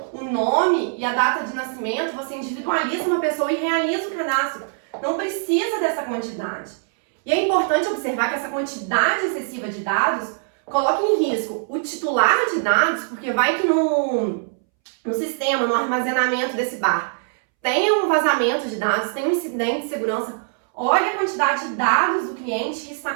o nome e a data de nascimento, você individualiza uma pessoa e realiza o cadastro. Não precisa dessa quantidade. E é importante observar que essa quantidade excessiva de dados coloca em risco o titular de dados, porque vai que no sistema, no armazenamento desse bar, tem um vazamento de dados, tem um incidente de segurança. Olha a quantidade de dados do cliente que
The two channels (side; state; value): left; silent; 64 dB below the other